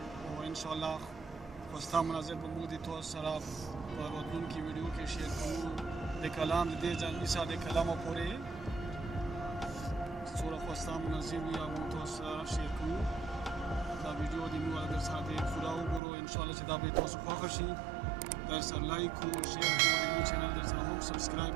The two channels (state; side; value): drops out; left; at 16.0 s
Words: او انشاءالله خوستا مناظر به موږ د تاسو سره په راتلونکي ویډیو کې شیر کوو د کلام د دې ځانګړي ساده کلامو پورې څومره خوستا مناظر وي هغه تاسو سره شیر کوو دا ویډیو د موږ در سره د پوره وګورو انشاءالله چې دا به تاسو خوښ شي در سره لایک کو شیر کو د چینل در سره هم سبسکرایب